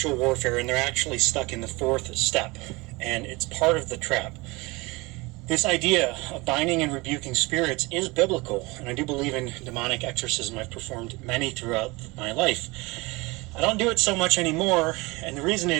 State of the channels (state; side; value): quieter; left; 24.2 dB